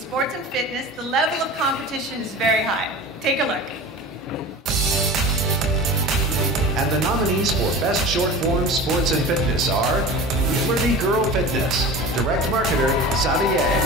and fitness, the level of competition is very high. Take a look. And the nominees for Best Short Form Sports and Fitness are Liberty Girl Fitness, Direct Marketer, Xavier.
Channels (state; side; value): normal; both; correlation 0.35